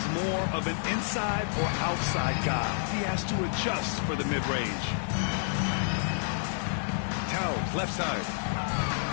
more of an inside or outside guy. He has to adjust for the mid-range. Towns, left side.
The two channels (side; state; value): right; silent; digital silence